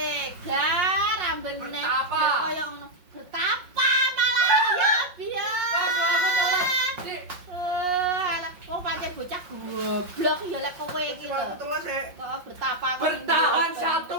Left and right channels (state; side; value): late; left; 5.5 ms